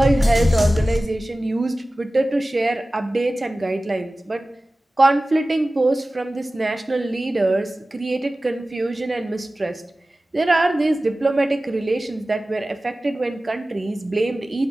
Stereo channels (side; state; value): both; normal; correlation 0.97